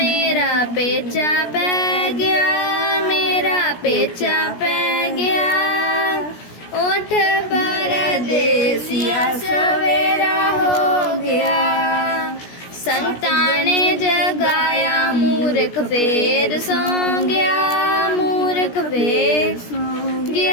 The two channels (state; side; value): late; right; 17 ms